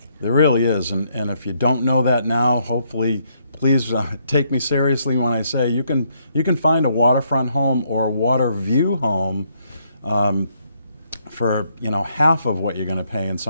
There really is, and if you don't know that now, hopefully, please take me seriously when I say you can find a waterfront home or a water view home for, you know, half of what you're going to pay in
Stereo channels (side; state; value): both; inverted; correlation -0.73